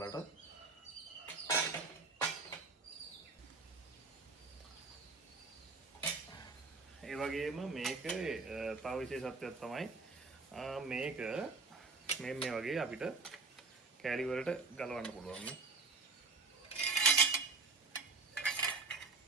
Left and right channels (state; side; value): quieter; left; 4.1 dB